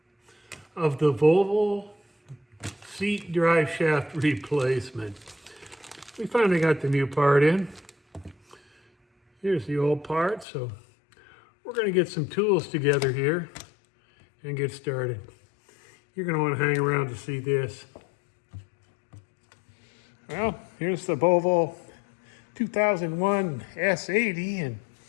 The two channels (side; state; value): right; drops out; at 10.5 s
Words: of the Volvo seat drive shaft replacement. We finally got the new part in. Here's the old part, so we're going to get some tools together here and get started. You're going to want to hang around to see this. Well, here's the Volvo 2001 S80, and